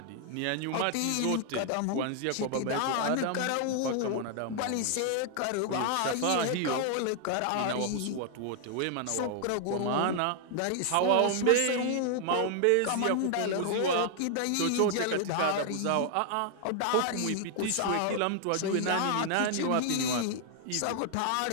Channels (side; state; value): both; different; correlation 0.00